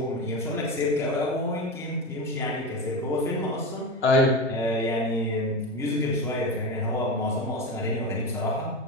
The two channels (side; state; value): both; normal; correlation 0.21